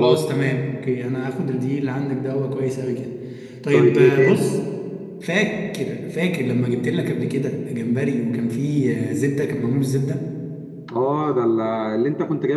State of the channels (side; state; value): both; identical; correlation 1.00